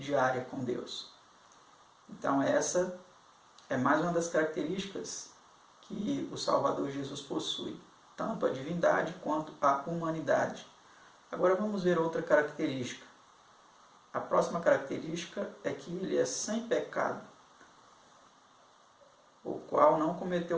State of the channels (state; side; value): identical; both; correlation 1.00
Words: com Deus. Então essa é mais uma das características que o Salvador Jesus possui, tanto a divindade quanto a humanidade. Agora vamos ver outra característica. A próxima característica é que ele é sem pecado, o qual não